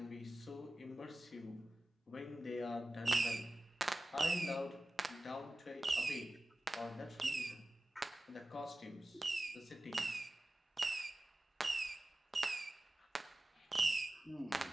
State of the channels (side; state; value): both; normal; correlation 0.96